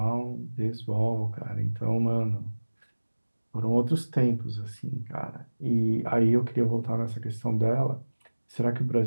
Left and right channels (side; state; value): both; inverted; correlation -1.00